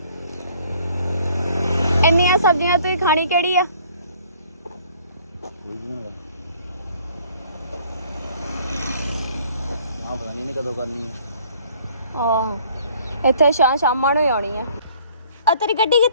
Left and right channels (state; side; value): inverted; both; correlation -0.58